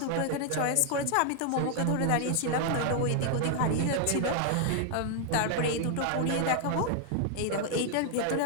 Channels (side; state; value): both; different; correlation 0.00